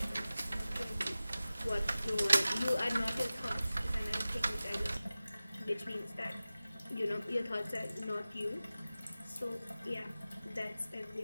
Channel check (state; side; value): inverted; both; correlation -0.96